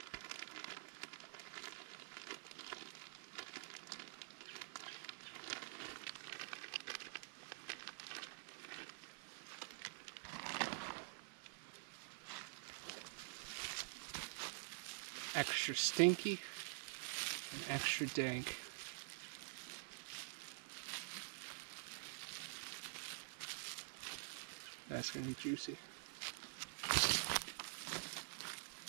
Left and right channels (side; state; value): left; silent; digital silence